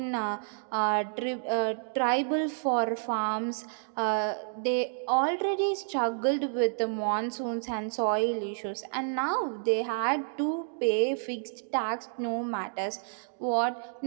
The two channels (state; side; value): silent; left; digital silence